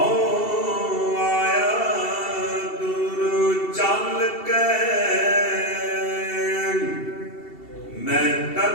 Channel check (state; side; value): late; right; 2.7 ms